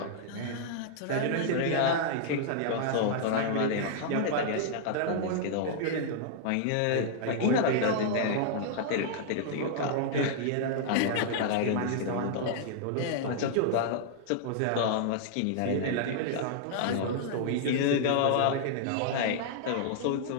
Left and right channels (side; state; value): both; different; correlation -0.01